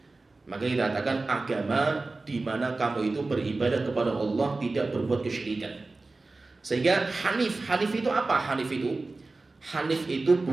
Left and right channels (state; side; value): quieter; left; 3.4 dB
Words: Maka kita katakan agama di mana kamu itu beribadah kepada Allah, tidak berbuat kesyirikan. Sehingga hanif itu apa? Hanif itu